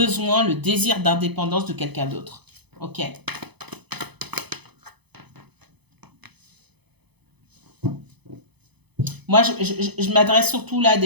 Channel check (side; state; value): left; late; 0.98 ms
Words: le désir d'indépendance de quelqu'un d'autre. Ok. Moi, je m'adresse surtout là à